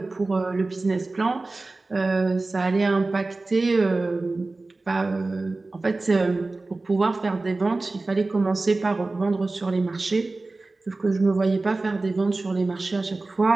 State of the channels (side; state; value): left; quieter; 3.3 dB